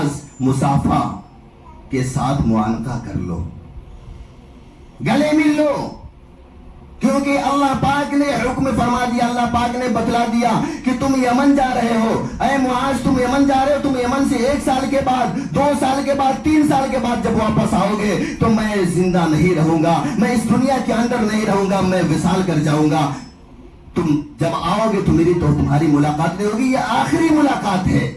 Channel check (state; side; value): identical; both; correlation 1.00